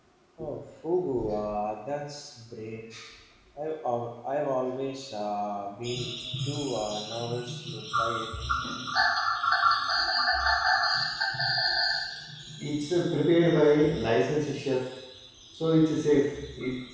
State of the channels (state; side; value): identical; both; correlation 1.00